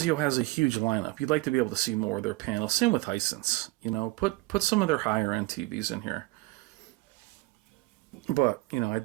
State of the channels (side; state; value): left; quieter; 20.8 dB